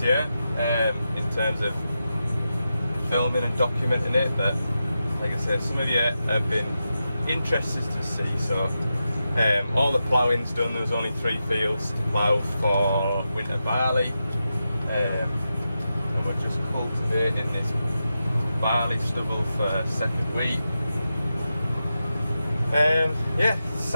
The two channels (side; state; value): both; inverted; correlation -0.90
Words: year in terms of filming and documenting it, but like I said, some of you have been interested to see. So all the ploughing's done. There was only 3 fields to plough for winter barley, and we're just cultivating this barley stubble for second wheat. Yeah,